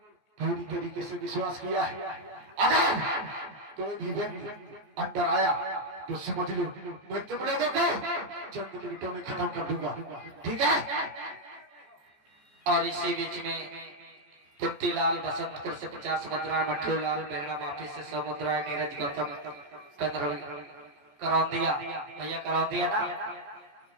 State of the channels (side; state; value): left; late; 14 ms